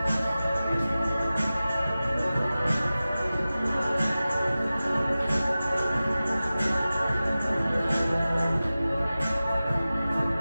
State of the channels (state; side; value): inverted; both; correlation -0.96